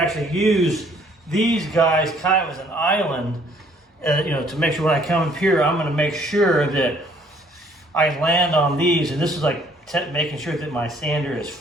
actually use these guys kind of as an island, to make sure when I come up here, I'm going to make sure that I land on these. And this is like making sure that my sander is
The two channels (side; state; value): both; normal; correlation 0.62